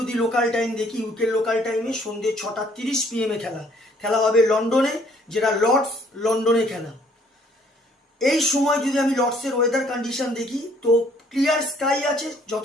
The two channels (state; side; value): normal; both; correlation 0.62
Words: লোকাল টাইম দেখি, ইউকের লোকাল টাইমে সন্ধ্যে 6:30 PM এ খেলা। খেলা হবে লন্ডনে, যেটা লর্ডস লন্ডনে খেলা। এই সময় যদি আমি লর্ডসের ওয়েদার কন্ডিশন দেখি, তো ক্লিয়ার স্কাই আছে,